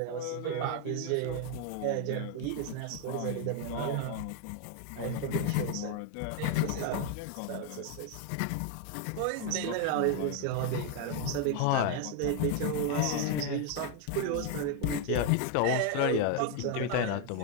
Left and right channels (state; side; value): different; both; correlation 0.01